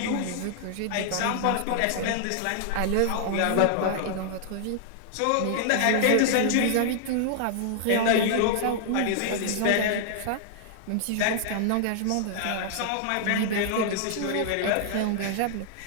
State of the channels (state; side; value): different; both; correlation -0.01